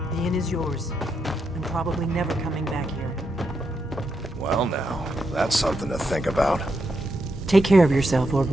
The inn is yours. I'm probably never coming back here. Well now, that's something to think about. Take care of yourself,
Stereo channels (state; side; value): normal; both; correlation 0.82